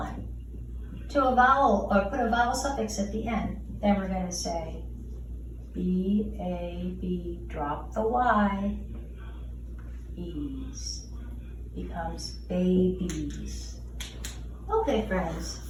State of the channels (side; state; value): both; identical; correlation 1.00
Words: to a vowel, or put a vowel suffix at the end. Then we're going to say B-A-B, drop the Y, E's, becomes babies. Okay, friends,